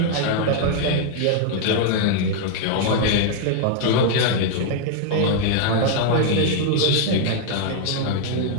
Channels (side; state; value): both; different; correlation 0.00